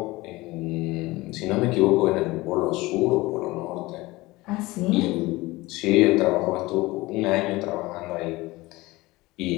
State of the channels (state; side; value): quieter; right; 20.6 dB